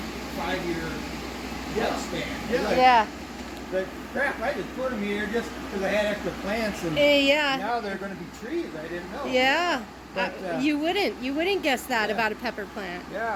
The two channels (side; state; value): both; identical; correlation 1.00